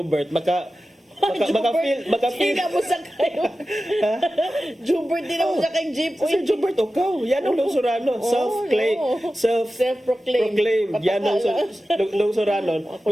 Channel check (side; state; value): both; normal; correlation 0.94